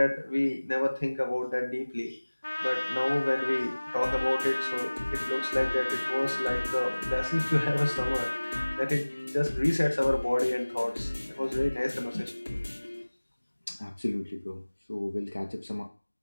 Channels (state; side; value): inverted; both; correlation -1.00